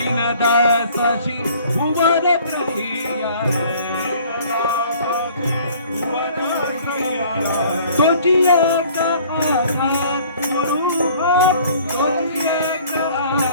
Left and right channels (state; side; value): inverted; both; correlation -0.53